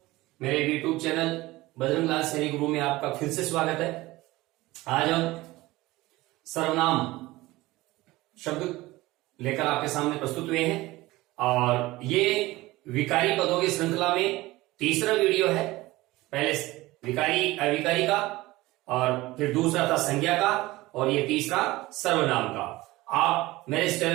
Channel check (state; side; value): quieter; left; 19.1 dB